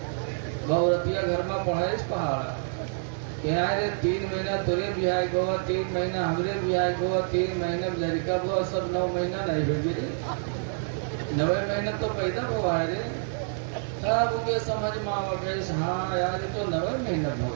وہ عورتیا گھر میں پڑھائش پہاڑا کہ آئے 3 مہینہ تیرے بہائے گوا, 3 مہینہ ہمارے بہائے گوا, 3 مہینہ لڑکا ہوا, سب 9 مہینہ نہیں ہوگی رے. 9 مہینہ تو پیدا ہوا ہے رے. تب وہ سمجھ میں آوا کہ ہاں یار یہ تو 9 مہینہ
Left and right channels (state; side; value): silent; left; digital silence